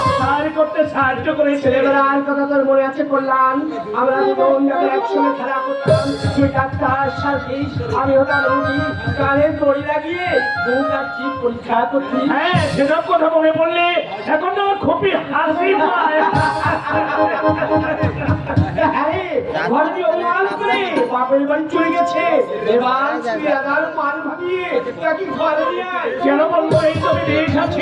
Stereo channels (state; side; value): identical; both; correlation 1.00